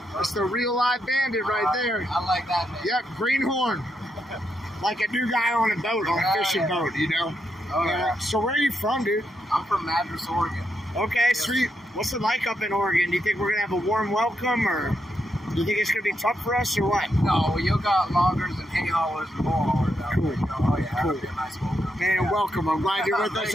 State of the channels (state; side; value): normal; both; correlation 0.81